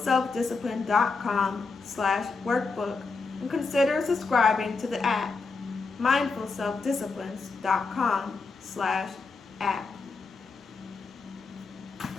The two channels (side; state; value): right; quieter; 4.3 dB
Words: and consider subscribing to the app, mindfulselfdisciplines.com/app.